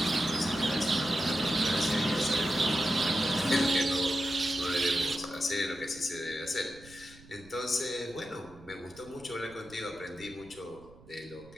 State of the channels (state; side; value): noise; right; rumble, 22 dB below the sound